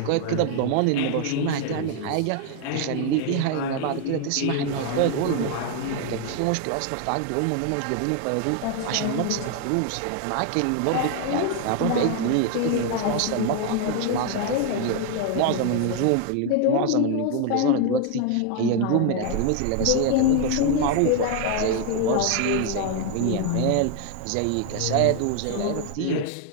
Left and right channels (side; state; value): both; different; correlation 0.01